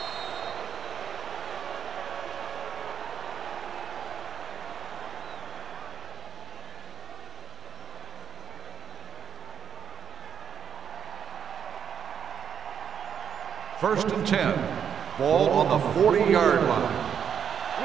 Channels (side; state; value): left; quieter; 7.9 dB